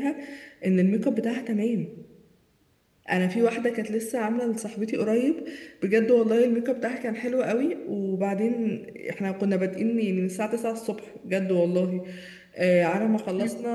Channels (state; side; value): identical; both; correlation 1.00